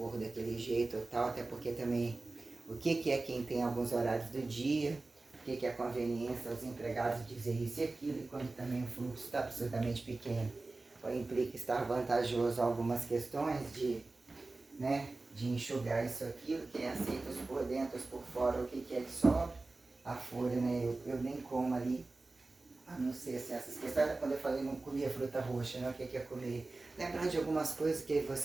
daquele jeito ou tal, até porque também o que é quem tem alguns horários do dia, o que é a conveniência aos empregados dizer isso e aquilo, e quando também o fluxo está absolutamente pequeno, ou implica estar vantajoso algumas questões de, né, de enxugar isso aquilo, quem aceita os por dentro, os por fora, o que é que sobra, a folha, né, eu nem como ali, a não ser assim, essas questões, quando eu falei não comia fruta roxa, né, o que é comer, lembrando de algumas coisas que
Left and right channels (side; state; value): left; quieter; 3.3 dB